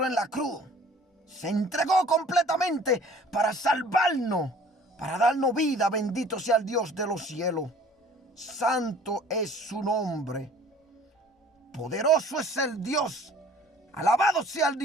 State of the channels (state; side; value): normal; both; correlation 0.51